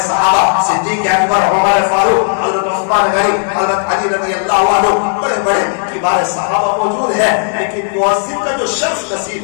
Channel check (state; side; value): silent; right; digital silence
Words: صدیق اکبر, عمر فاروق, حضرت عثمان غنی, حضرت علی رضی اللہ عنہ, بڑے بڑے کبار صحابہ موجود ہیں. لیکن مؤذن کا جو شخص